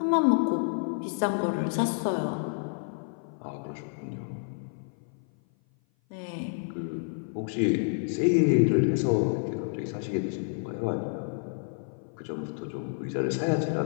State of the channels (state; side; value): silent; right; 56 dB below the other